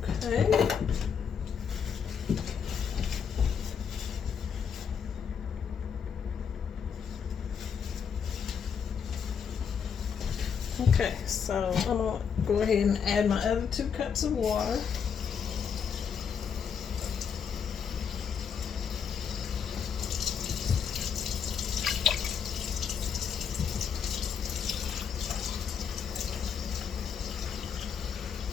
Okay. Okay, so I'm going to go ahead and add my other 2 cups of water.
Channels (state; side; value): quieter; right; 7.0 dB